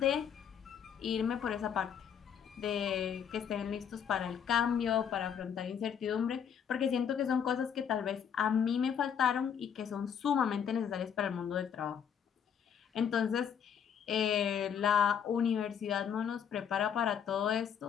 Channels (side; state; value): right; quieter; 8.0 dB